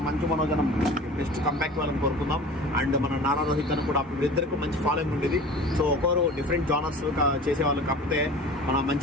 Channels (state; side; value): normal; both; correlation 0.40